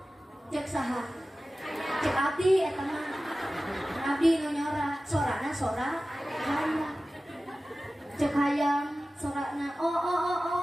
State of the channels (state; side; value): normal; both; correlation 0.96